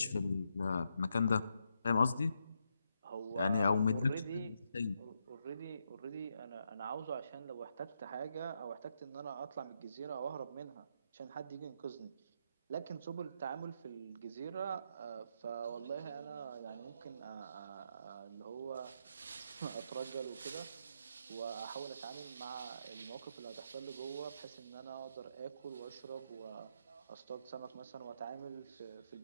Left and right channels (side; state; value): both; inverted; correlation -0.81